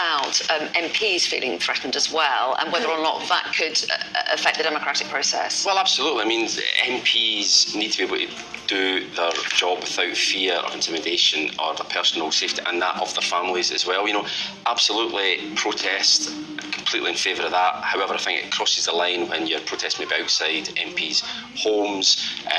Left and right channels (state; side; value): identical; both; correlation 1.00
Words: MPs feeling threatened as well, and whether or not that could affect the democratic process. Well, absolutely. I mean, MPs need to be able to do their job without fear of intimidation or their personal safety, and that of their families as well. You know, absolutely protest. Completely in favour of that. However, I think it crosses the line when you're protesting maybe outside MPs' homes